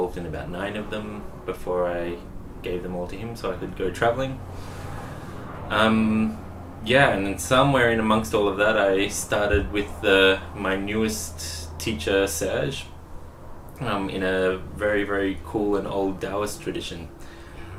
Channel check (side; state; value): both; identical; correlation 1.00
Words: in about 9 of them before I gave them all to him so I could go traveling. Yeah, and then somewhere in amongst all of that, I started with my newest teacher, Serge, in a very, very cool and old Daoist tradition.